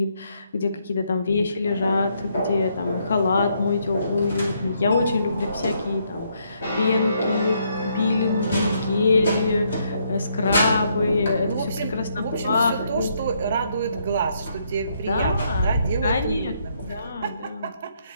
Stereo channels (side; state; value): both; inverted; correlation -0.73